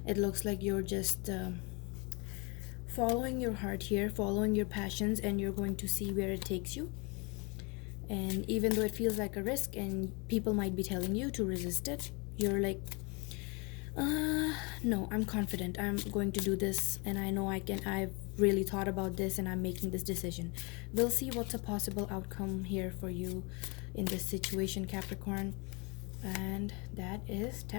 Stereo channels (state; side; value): quieter; right; 30.6 dB